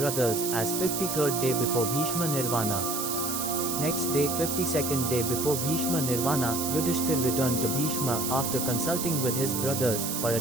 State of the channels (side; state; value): right; noise; hiss, 3 dB below the sound